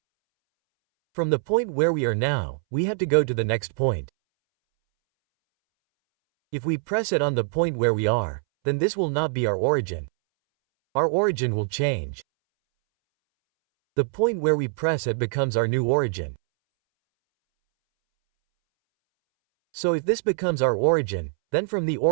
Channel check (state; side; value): silent; left; 63 dB below the other